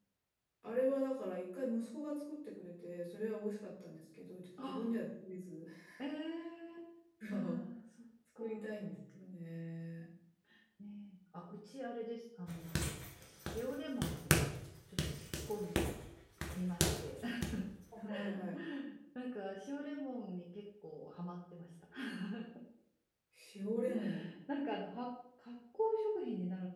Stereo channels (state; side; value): identical; both; correlation 1.00